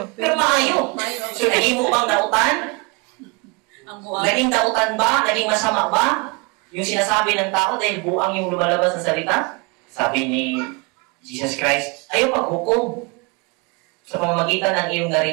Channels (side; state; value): left; quieter; 29.3 dB